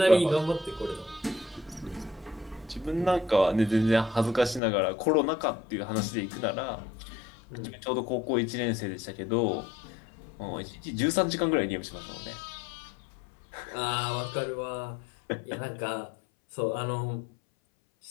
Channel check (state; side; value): drops out; right; at 4.6 s